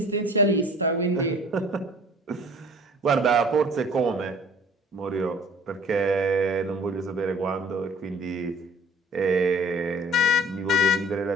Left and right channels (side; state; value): both; normal; correlation 0.50